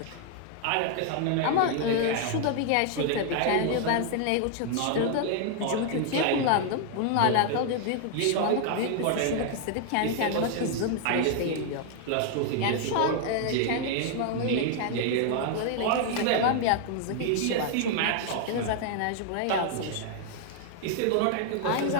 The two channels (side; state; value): both; different; correlation 0.00